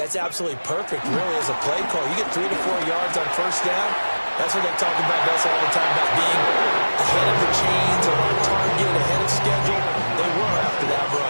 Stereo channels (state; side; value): inverted; both; correlation -1.00